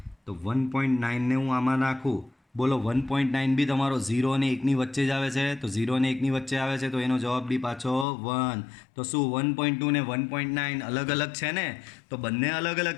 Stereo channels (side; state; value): right; drops out; at 8.1 s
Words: તો 1.9ને હું આમાં નાખું. બોલો 1.9 બી તમારો 0 અને 1ની વચ્ચે જ આવે છે. તો 0 અને 1ની વચ્ચે આવે છે તો એનો જવાબ બી પાછો 1. તો શું 1.2 ને 1.9 અલગ અલગ છે ને? તો બંને અલગ અલગ